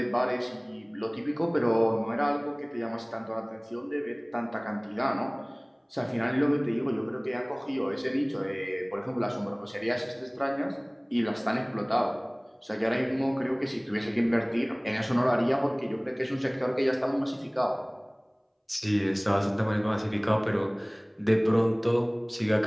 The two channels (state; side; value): identical; both; correlation 1.00